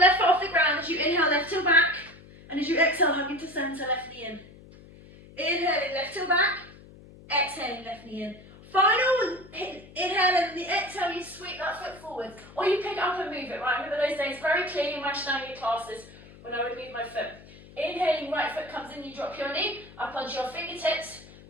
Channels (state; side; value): noise; left; hum, 21 dB below the sound